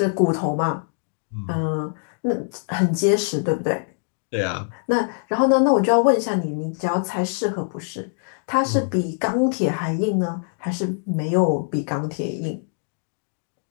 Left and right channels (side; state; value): right; silent; 63 dB below the other